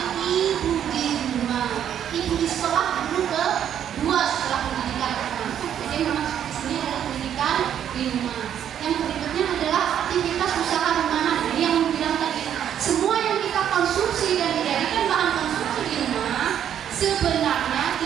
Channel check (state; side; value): quieter; left; 9.6 dB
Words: ibu di rumah. Ibu di sekolah guru kedua setelah pendidikan anak. Jadi memang di sini adalah pendidikan di rumah. Yang berikutnya adalah aktivitas usaha rumahan. Jadi yang bilang tadi, semua yang kita konsumsi dan dijadikan bahan konsumsi di rumah sebenarnya